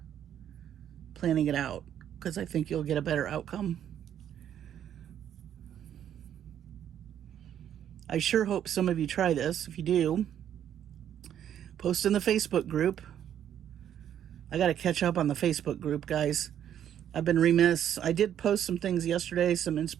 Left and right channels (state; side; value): quieter; left; 10.0 dB